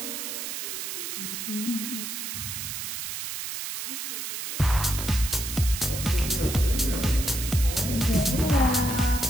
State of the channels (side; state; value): right; noise; hiss, 5 dB below the sound